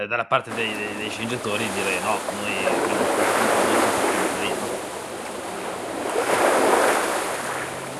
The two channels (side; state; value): both; identical; correlation 1.00